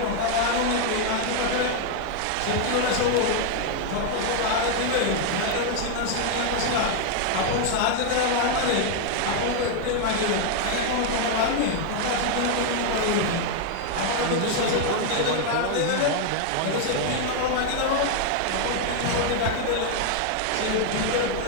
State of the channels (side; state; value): both; different; correlation 0.00